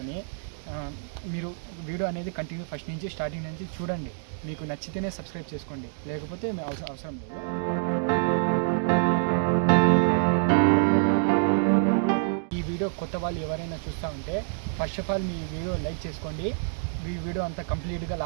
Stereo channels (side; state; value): left; silent; digital silence